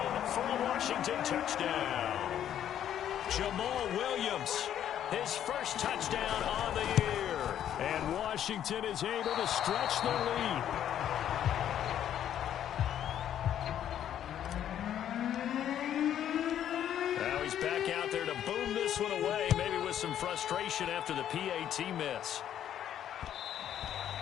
for a Washington touchdown. Jamal Williams, his first touchdown on the year. And Washington is able to stretch their lead. Now he's back out there to boom this one away, maybe with some frustration after the PAT miss.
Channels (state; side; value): quieter; right; 10.4 dB